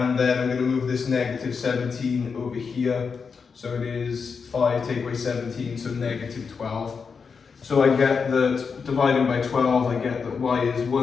then I'm going to move this negative 17 over here, so it is 5 take away 17, so negative 12. So I get that dividing by 12, I get that y is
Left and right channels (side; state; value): right; quieter; 5.6 dB